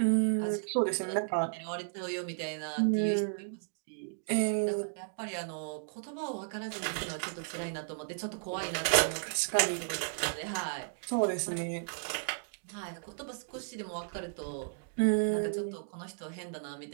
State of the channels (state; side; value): silent; left; digital silence